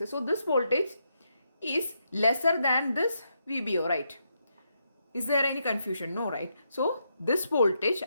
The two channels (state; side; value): inverted; both; correlation -0.80